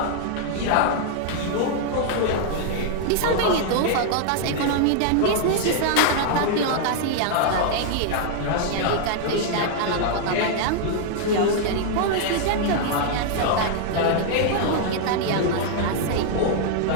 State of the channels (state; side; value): different; both; correlation -0.01